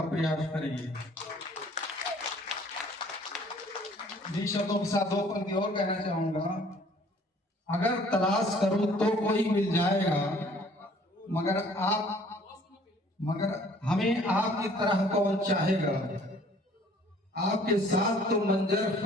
प्रयास करेंगे। इन शब्दों के साथ दो पंक्ति और कहना चाहूंगा। अगर तलाश करूं तो कोई मिल जाएगा, मगर हमें आपकी तरह कौन चाहेगा। आपके साथ तो मंजर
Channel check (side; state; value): both; normal; correlation 0.56